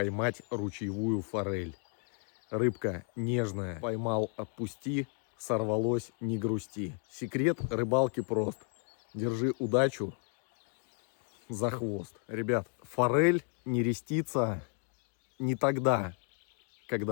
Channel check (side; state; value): right; quieter; 39.6 dB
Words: ручьевую форель. Рыбка нежная, поймал, отпусти, сорвалось, не грусти. Секрет рыбалки прост. Держи удачу за хвост. Ребят, форель нерестится не тогда,